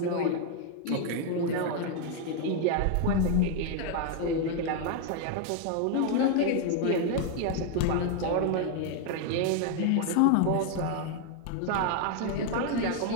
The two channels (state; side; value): different; both; correlation 0.01